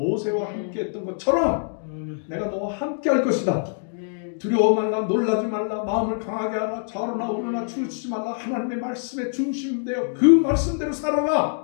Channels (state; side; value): silent; right; digital silence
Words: 함께 했던 것처럼 내가 너와 함께 할 것이다. 두려워 말라, 놀라지 말라, 마음을 강하게 하라, 좌로나 우로나 치우치지 말라. 하나님의 말씀에 중심되어 그 말씀대로